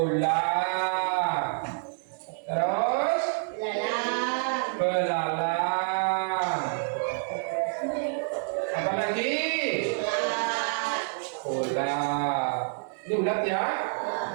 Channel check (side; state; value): left; silent; 59 dB below the other